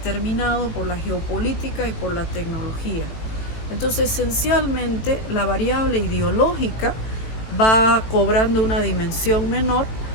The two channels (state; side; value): late; right; 18 ms